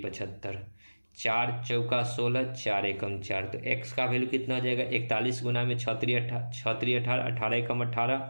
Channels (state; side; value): inverted; both; correlation -1.00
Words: 4 चौका 16, 4 एकम 4, तो x का वैल्यू कितना हो जाएगा? 41 गुना में 6 3 18, 18 एकम 18,